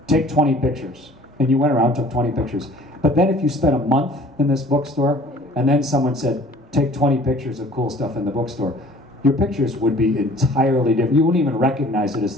take 20 pictures, and you went around and took 20 pictures. But then if you spent a month in this bookstore, and then someone said, take 20 pictures of cool stuff in the bookstore, your pictures would be entirely different. You wouldn't even recognize it as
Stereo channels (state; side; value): normal; both; correlation 0.51